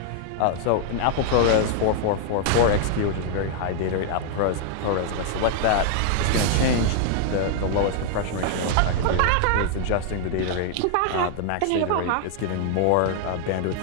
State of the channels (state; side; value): different; both; correlation 0.00